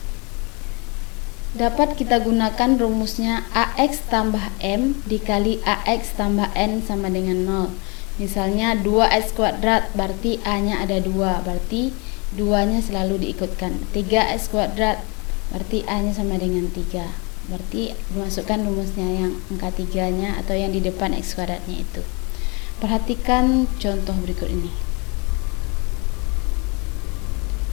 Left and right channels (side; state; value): right; quieter; 30.6 dB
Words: dapat kita gunakan rumusnya AX tambah M dikali AX tambah N sama dengan 0. Misalnya 2X kuadrat berarti A-nya ada 2, berarti 2-nya selalu diikutkan. 3X kuadrat berarti A-nya sama dengan 3, berarti dimasukkan rumusnya yang angka 3-nya atau yang di depan X kuadratnya itu. Perhatikan contoh berikut ini.